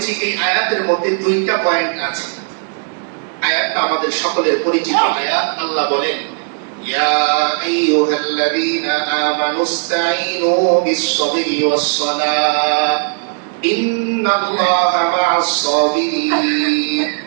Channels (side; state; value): left; silent; 64 dB below the other